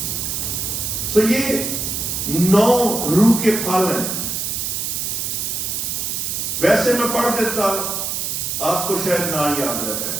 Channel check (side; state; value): right; noise; hiss, 2 dB below the sound